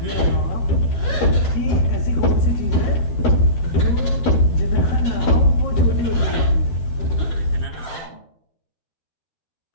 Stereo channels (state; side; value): late; right; 12 ms